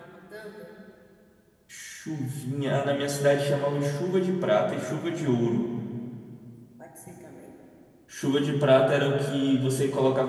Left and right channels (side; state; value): both; identical; correlation 1.00